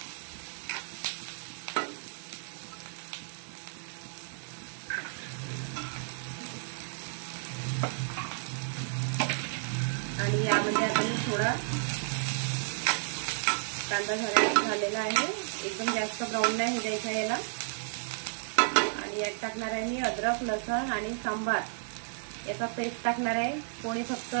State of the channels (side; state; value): left; silent; 56 dB below the other